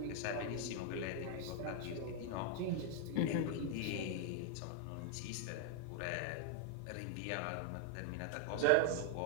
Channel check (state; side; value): different; both; correlation -0.01